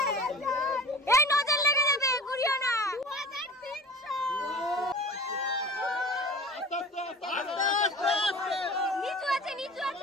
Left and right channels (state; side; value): normal; both; correlation 0.40